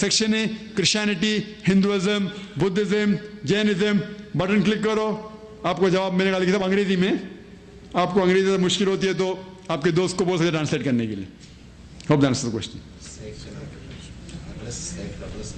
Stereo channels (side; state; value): both; identical; correlation 1.00